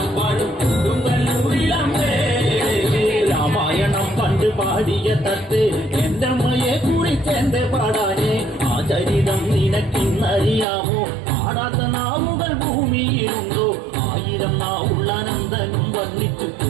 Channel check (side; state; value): left; drops out; at 10.7 s